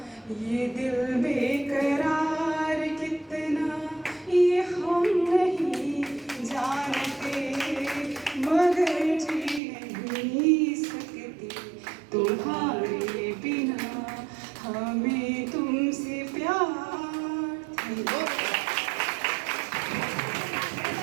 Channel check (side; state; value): left; drops out; at 9.6 s